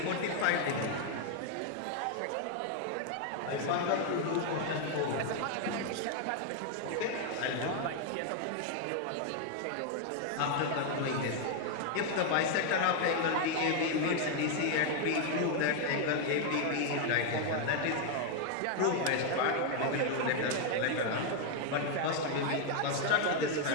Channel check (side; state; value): both; different; correlation 0.00